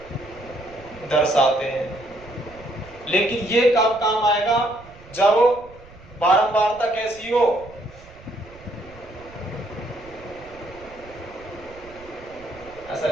दर्शाते हैं, लेकिन ये कब काम आएगा, जब बारंबारता कैसी हो, ऐसा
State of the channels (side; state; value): right; noise; rumble, 21 dB below the sound